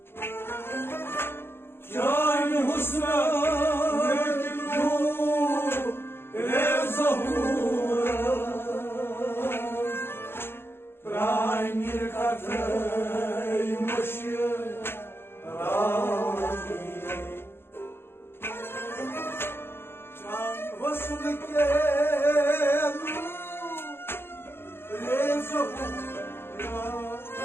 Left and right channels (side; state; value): right; late; 0.11 ms